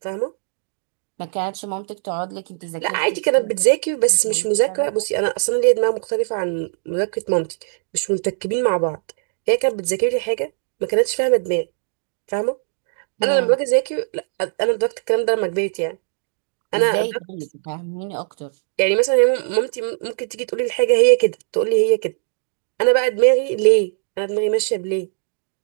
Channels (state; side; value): silent; left; digital silence